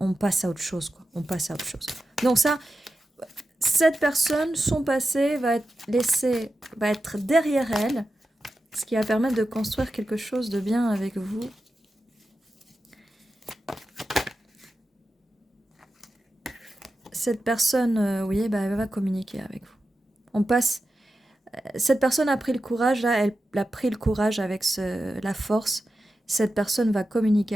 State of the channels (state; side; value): normal; both; correlation 0.91